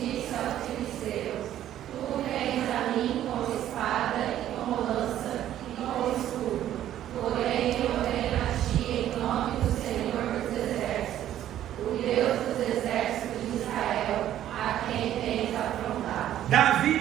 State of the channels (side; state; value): left; quieter; 11.9 dB